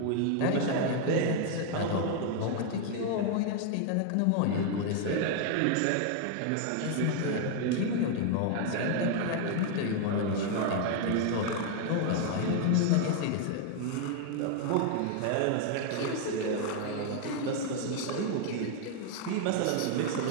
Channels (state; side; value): different; both; correlation 0.00